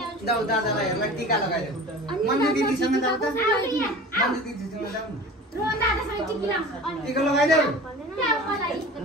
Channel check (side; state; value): both; normal; correlation 0.38